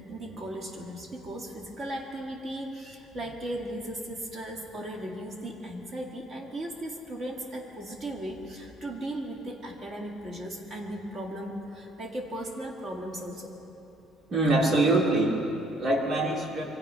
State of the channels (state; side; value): normal; both; correlation 0.63